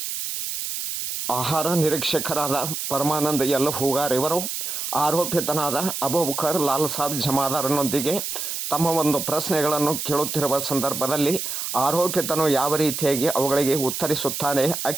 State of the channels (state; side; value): noise; right; hiss, 4 dB below the sound